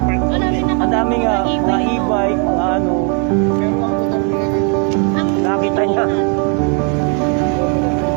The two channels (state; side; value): quieter; left; 37.7 dB